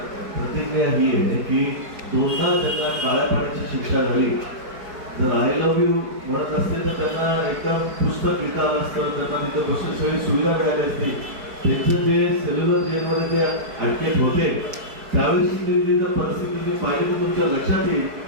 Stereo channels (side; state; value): left; late; 4.6 ms